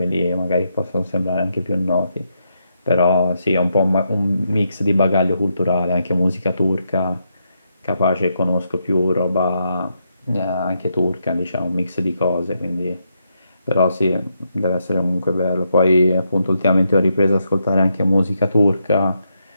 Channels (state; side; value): inverted; both; correlation -0.81